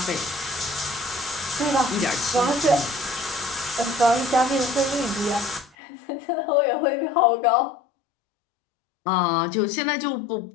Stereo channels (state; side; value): drops out; right; at 5.7 s